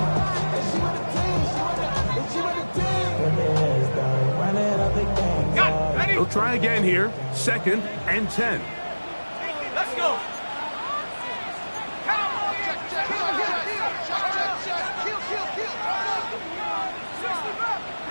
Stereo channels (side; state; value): both; inverted; correlation -1.00